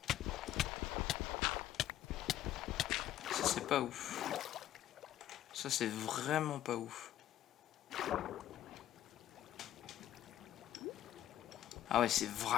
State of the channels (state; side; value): quieter; right; 12.3 dB